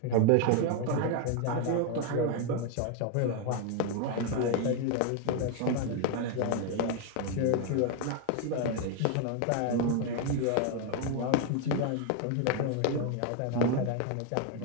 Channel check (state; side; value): different; both; correlation 0.01